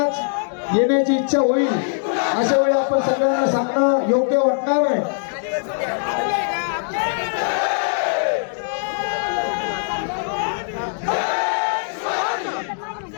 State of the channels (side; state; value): right; silent; digital silence